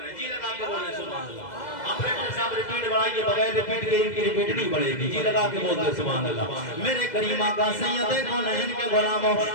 جی لگا کے بولے سبحان اللہ۔ آپریٹر صاحب ریپیٹ بڑھائیے، بغیر ریپیٹ کے ان کی ریپیٹ نہیں بڑھے گی۔ جی لگا کے بولتے سبحان اللہ۔ میرے کریم آقا سید کونین کے غلاموں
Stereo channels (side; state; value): right; late; 2.0 ms